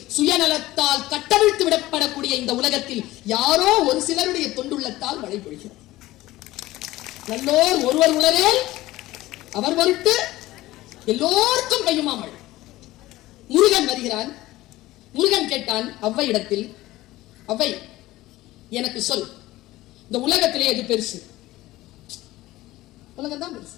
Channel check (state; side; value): quieter; right; 17.2 dB